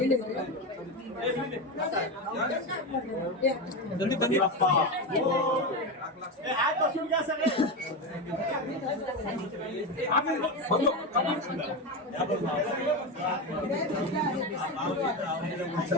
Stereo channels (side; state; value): both; normal; correlation 0.16